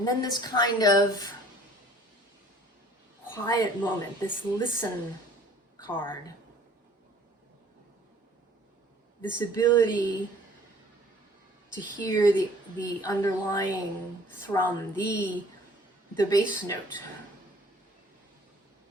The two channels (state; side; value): normal; both; correlation 0.54